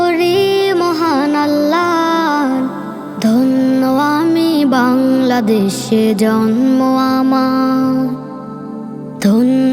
মহান আল্লাহর। ধন্য আমি বাংলাদেশে জন্ম আমার,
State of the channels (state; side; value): identical; both; correlation 1.00